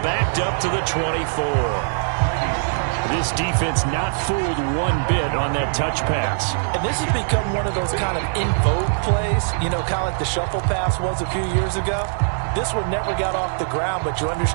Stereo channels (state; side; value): silent; left; digital silence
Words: backed up to the 24. This defense not fooled one bit on that touch pass. And this has become one of those kind of in vogue plays, you know, kind of like the shuffle pass was a few years ago. This one never got off the ground, but you